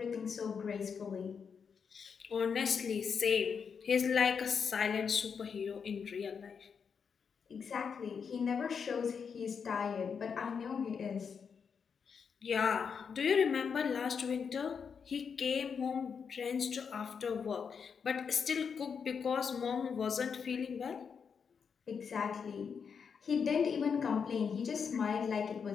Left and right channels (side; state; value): right; quieter; 6.3 dB